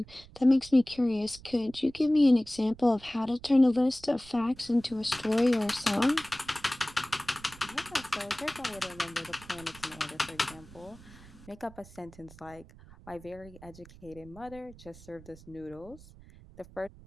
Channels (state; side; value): noise; right; rumble, 20 dB below the sound